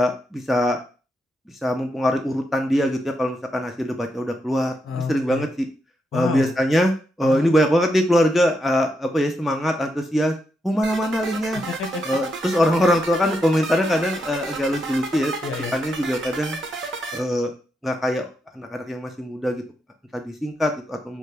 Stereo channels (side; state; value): both; normal; correlation 0.82